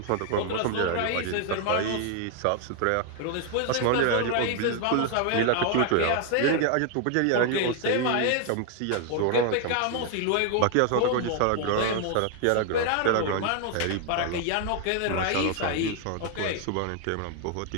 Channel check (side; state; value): both; different; correlation 0.00